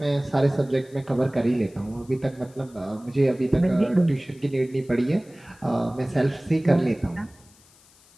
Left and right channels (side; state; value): left; noise; hiss, 28 dB below the sound